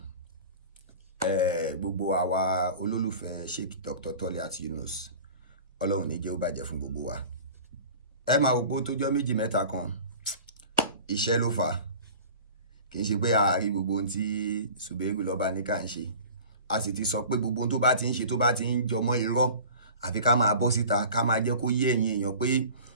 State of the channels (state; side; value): inverted; both; correlation -0.40